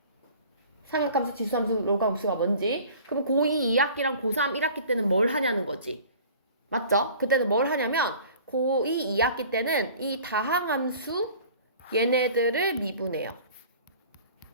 삼각함수, 지수함수, 로그함수가 뭔지. 그럼 고2 2학기랑 고3 1학기 때는 뭘 하냐는 거지. 맞죠? 그때는 뭘 하냐면 고2 2학기 때는 이 다항함수 얘네들을 미분해요.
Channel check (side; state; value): both; inverted; correlation -0.46